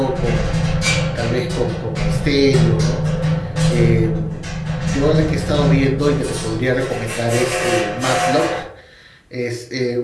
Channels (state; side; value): identical; both; correlation 1.00